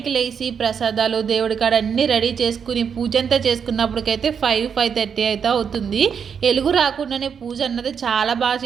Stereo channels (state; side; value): quieter; left; 7.0 dB